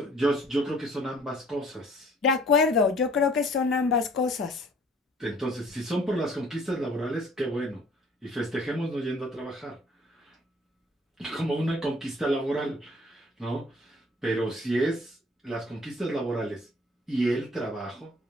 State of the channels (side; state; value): both; normal; correlation 0.56